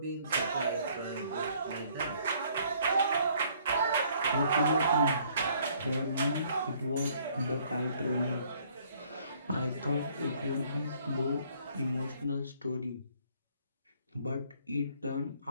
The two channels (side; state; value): both; inverted; correlation -0.62